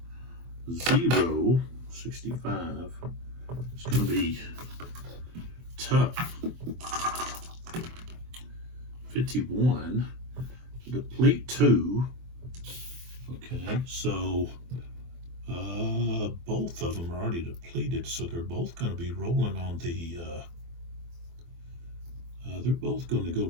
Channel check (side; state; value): left; late; 24 ms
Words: 0, 65. It's going to be tough. 51, deplete 2. Okay, so both of them are already depleted, so they're both going to be rolling on the, they're both going to go